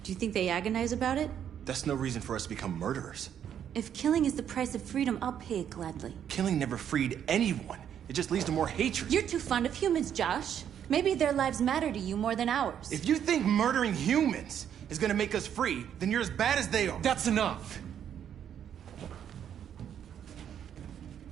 Do you think they agonize about it? That's no reason for us to become murderers. If killing is the price of freedom, I'll pay it gladly. Killing never freed anyone. It just leads to more hatred. You're too fond of humans, Josh. Maybe their lives matter to you more than ours. If you think murdering humans is gonna make us free, then you're as bad as they are. That's enough!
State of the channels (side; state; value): left; quieter; 9.2 dB